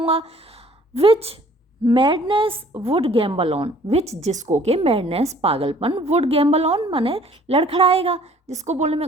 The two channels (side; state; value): both; normal; correlation 0.55